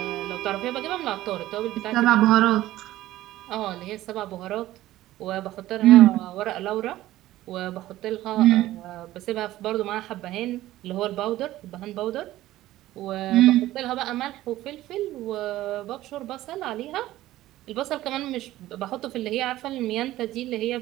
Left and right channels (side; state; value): left; quieter; 15.4 dB